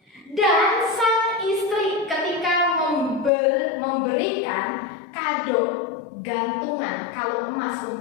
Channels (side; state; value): right; drops out; at 3.3 s